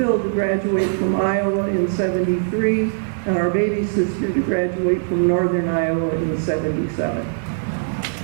to graduate from Iowa in 73, and our baby sister to graduate from Northern Iowa in 77.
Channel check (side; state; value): left; silent; digital silence